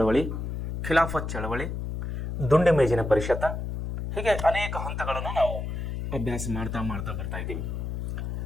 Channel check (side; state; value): left; noise; hum, 4 dB below the sound